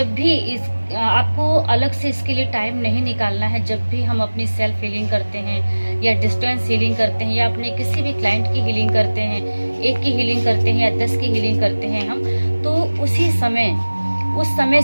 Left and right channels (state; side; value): inverted; both; correlation -1.00